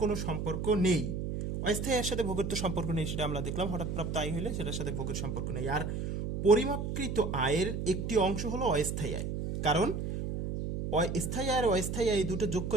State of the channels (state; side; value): noise; right; hum, 3 dB below the sound